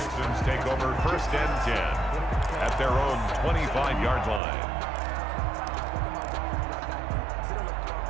Texans take over 1st and 10 at their own 25-yard line.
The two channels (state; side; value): drops out; left; at 4.4 s